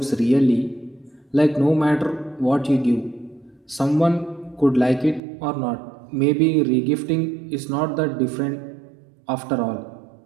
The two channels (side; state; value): left; drops out; at 5.2 s